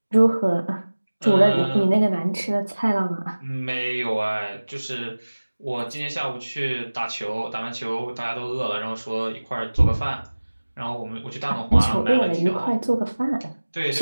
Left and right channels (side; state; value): both; inverted; correlation -1.00